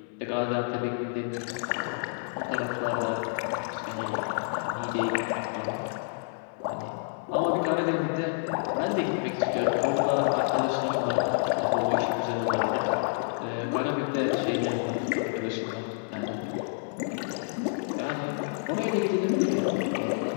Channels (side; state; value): right; silent; digital silence